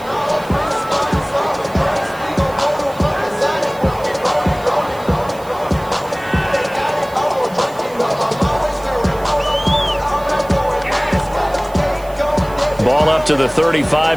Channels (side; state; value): right; noise; hiss, 22 dB below the sound